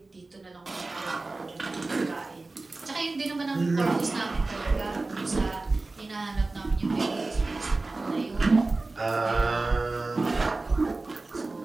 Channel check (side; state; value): left; quieter; 3.3 dB